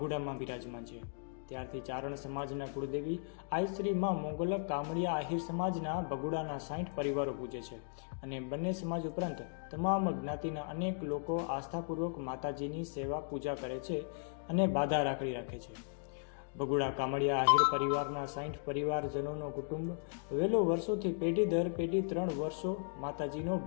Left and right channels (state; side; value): silent; right; digital silence